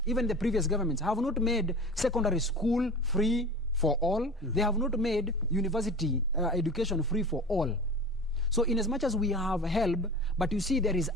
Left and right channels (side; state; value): both; normal; correlation 0.35